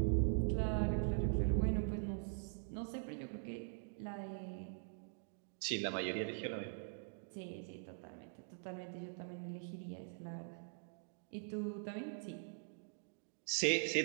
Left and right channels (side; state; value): left; silent; digital silence